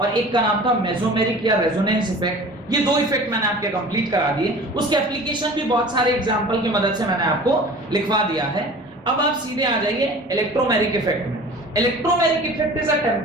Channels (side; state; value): both; normal; correlation 0.42